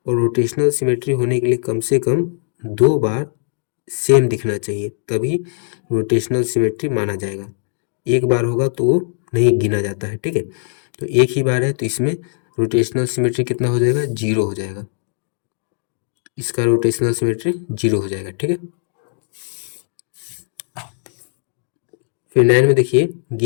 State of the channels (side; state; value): right; silent; digital silence